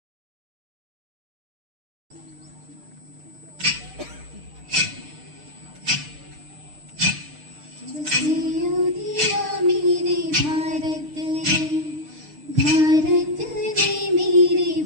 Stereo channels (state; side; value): late; left; 6.6 ms